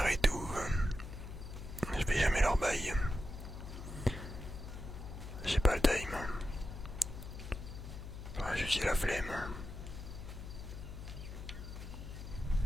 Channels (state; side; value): noise; left; hum, 10 dB below the sound